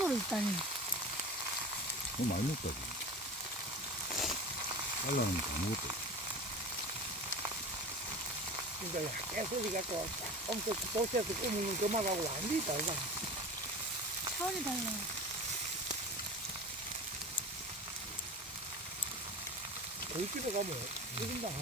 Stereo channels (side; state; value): both; normal; correlation 0.33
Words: 있다니. 너무 많이 먹다. 잘라놓으면 다 먹었다. 그러니까 깨소리 갖고 엄청 도시에서 꾸미는 그만하고 완전히 다르다. 차원이 달라. 거기 집에 가면 1인당